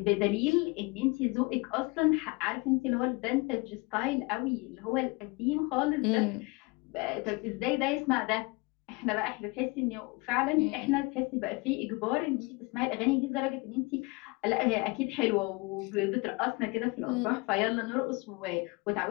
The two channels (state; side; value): quieter; right; 26.1 dB